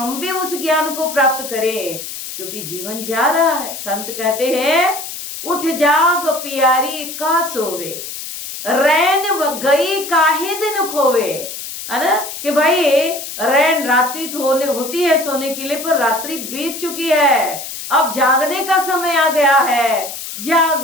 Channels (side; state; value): left; noise; hiss, 9 dB below the sound